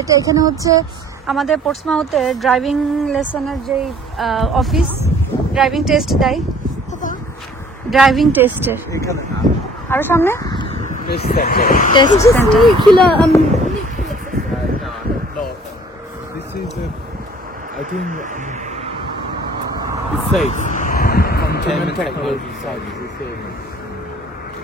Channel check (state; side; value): normal; both; correlation 0.54